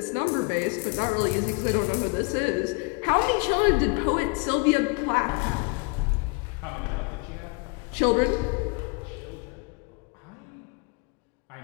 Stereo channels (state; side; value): quieter; right; 32.2 dB